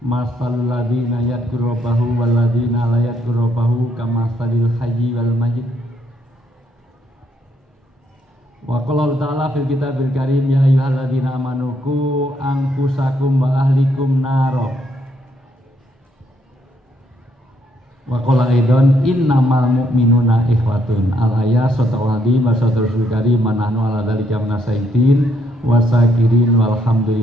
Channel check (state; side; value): normal; both; correlation 0.72